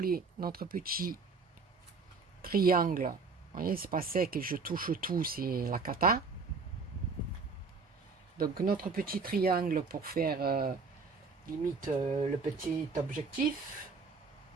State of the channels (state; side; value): quieter; left; 4.6 dB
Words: notre petit triangle. Vous voyez, c'est pas sec et je touche tout, c'est la cata. Donc notre petit triangle pour faire limite le petit objectif.